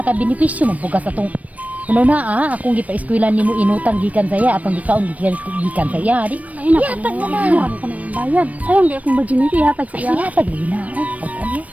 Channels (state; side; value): late; left; 0.069 ms